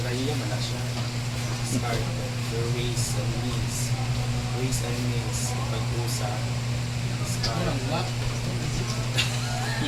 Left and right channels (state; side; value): identical; both; correlation 1.00